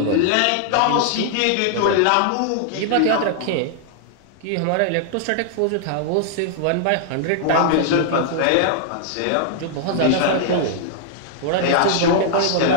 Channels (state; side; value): different; both; correlation -0.01